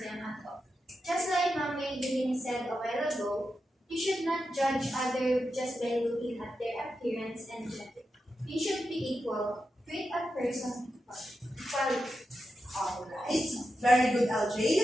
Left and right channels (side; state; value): both; normal; correlation 0.89